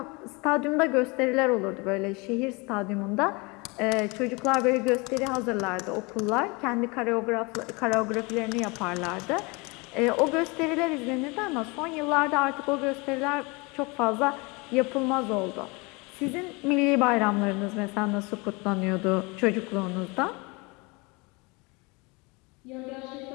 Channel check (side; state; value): right; quieter; 27.4 dB